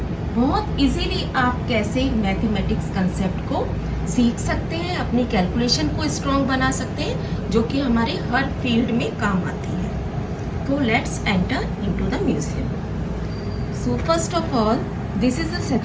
बहुत इजीली आप कैसे मैथमेटिक्स कंसेप्ट को सीख सकते हैं, अपनी कैलकुलेशन को स्ट्रॉन्ग बना सकते हैं, जो कि हमारे हर फील्ड में काम आती है। तो let's enter into the museum. So first of all this is the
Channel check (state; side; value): identical; both; correlation 1.00